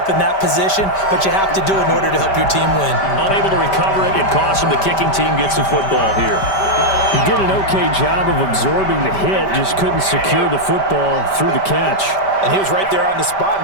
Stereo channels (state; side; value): late; right; 5.1 ms